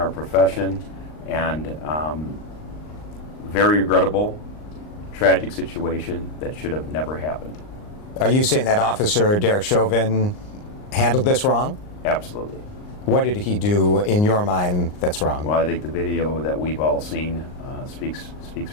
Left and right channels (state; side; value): late; right; 39 ms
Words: profession, and very regrettable, tragic situation that should have never happened. Are you saying that Officer Derek Chauvin handled this wrong? Absolutely. What did he do in your mind that's wrong? Well, I think the video that we've all seen speaks